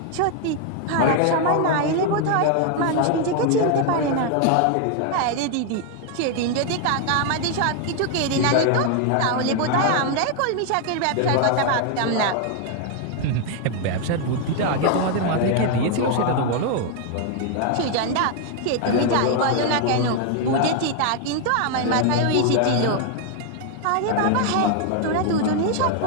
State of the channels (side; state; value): both; different; correlation 0.00